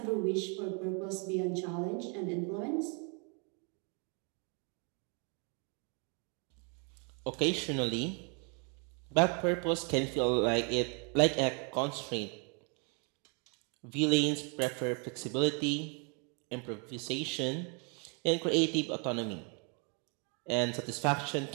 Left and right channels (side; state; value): left; quieter; 36.9 dB